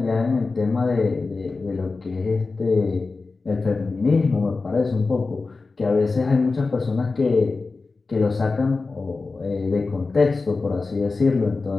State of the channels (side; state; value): right; quieter; 3.9 dB